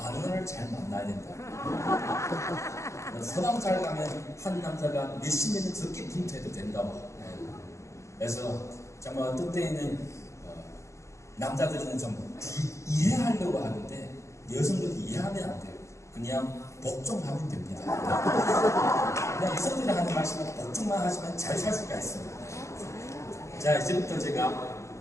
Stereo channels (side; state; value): right; late; 0.14 ms